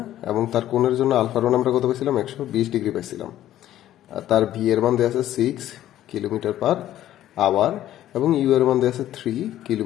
এবং তার কোণের জন্য আলফার মান আমরা কত পাইছিলাম? 120 ডিগ্রি পাইছিলাম। আর তার ভি এর মান দেওয়া আছে 6 কিলোমিটার/আওয়ার এবং ইউ এর মান দেওয়া আছে 3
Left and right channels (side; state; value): right; quieter; 12.8 dB